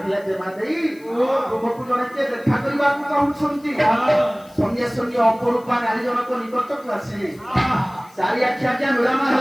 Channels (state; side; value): noise; left; hiss, 28 dB below the sound